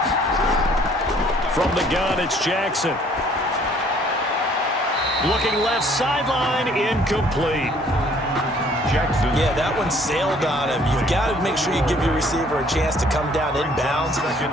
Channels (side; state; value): both; normal; correlation 0.59